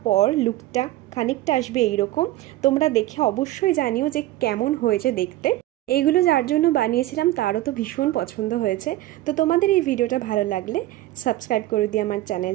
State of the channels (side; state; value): left; quieter; 15.7 dB